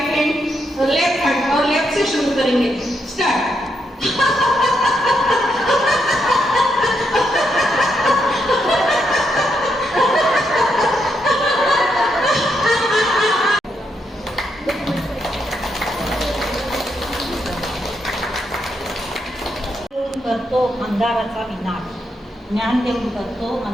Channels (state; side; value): normal; both; correlation 0.80